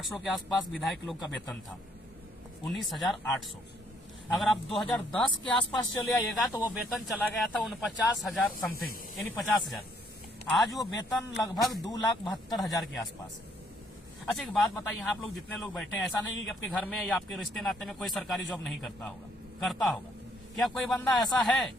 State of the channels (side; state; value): both; normal; correlation 0.68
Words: के आसपास विधायक लोग का वेतन था। 19,800। अगर आप 2010 के आसपास चले आइएगा तो वो वेतन चला गया था 49,000 समथिंग, यानी 50,000। आज वो वेतन लगभग 2,72,000 के आसपास है। अच्छा एक बात बताइए, आप लोग जितने लोग बैठे हैं, ऐसा नहीं कि आपके घर में या आपके रिश्ते नाते में कोई सरकारी जॉब नहीं करता होगा, करता होगा। क्या कोई बंदा ऐसा है